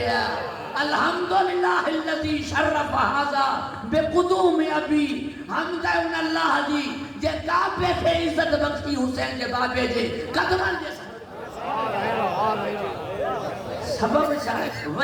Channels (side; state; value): both; identical; correlation 1.00